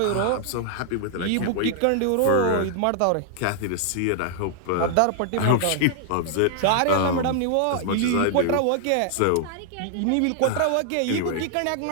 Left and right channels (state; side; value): different; both; correlation -0.01